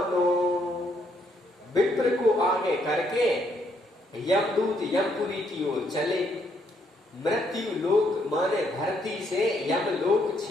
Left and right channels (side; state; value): both; normal; correlation 0.72